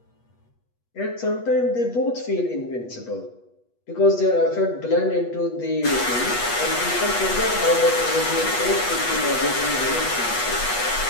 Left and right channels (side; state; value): right; late; 8.3 ms